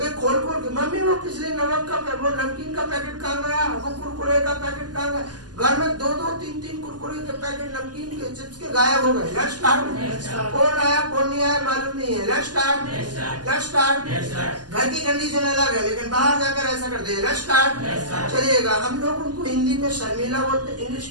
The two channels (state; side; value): late; left; 0.70 ms